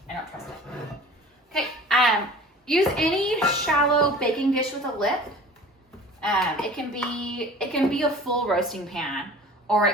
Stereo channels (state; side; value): normal; both; correlation 0.43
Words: I don't trust it. Okay, use any shallow baking dish with a lip. It can be a full roasting pan, or